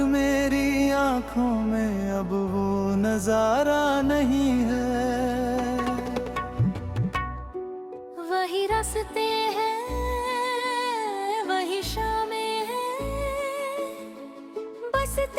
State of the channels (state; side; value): identical; both; correlation 1.00